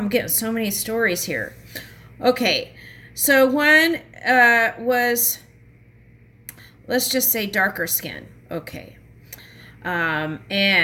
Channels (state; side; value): identical; both; correlation 1.00